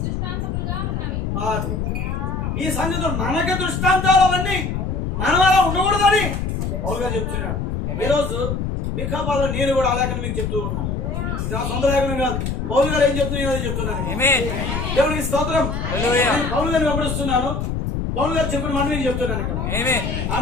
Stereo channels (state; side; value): noise; left; rumble, 2 dB below the sound